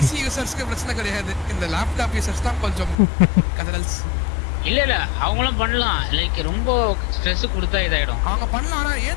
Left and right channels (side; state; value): right; drops out; at 3.0 s